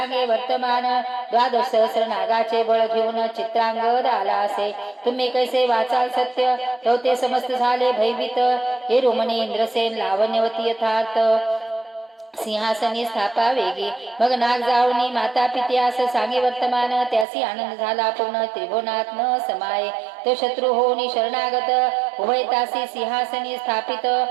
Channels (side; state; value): left; drops out; at 17.2 s